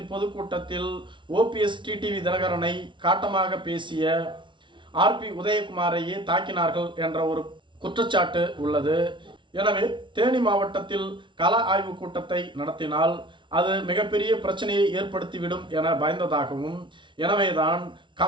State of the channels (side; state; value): left; late; 0.24 ms